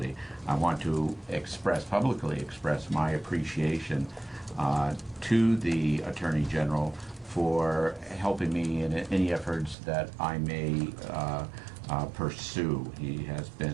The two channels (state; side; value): drops out; left; at 9.8 s